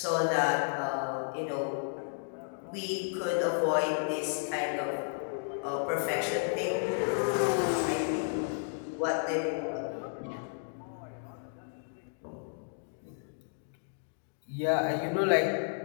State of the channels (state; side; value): silent; right; digital silence